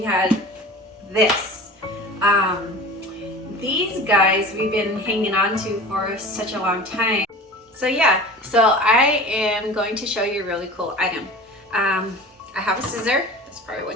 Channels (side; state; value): both; normal; correlation 0.37